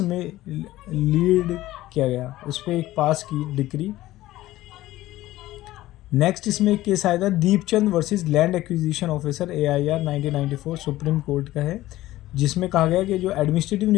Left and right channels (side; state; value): right; quieter; 16.1 dB